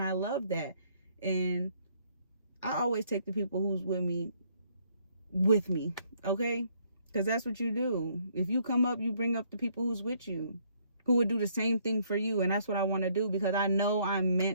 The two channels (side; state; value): both; inverted; correlation -0.67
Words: I love that. And I always take the people who's with me, okay? Because that's what you do. If you come up, you bring up the people who's with you, who would do the same thing for you. And that's what I want to do, because I know I'm